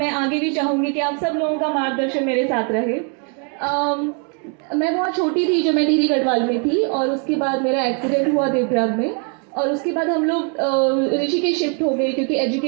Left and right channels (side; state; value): left; quieter; 37.9 dB